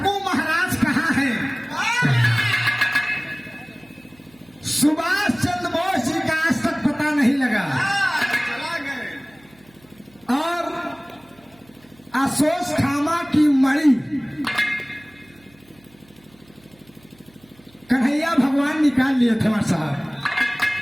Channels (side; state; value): right; noise; hum, 30 dB below the sound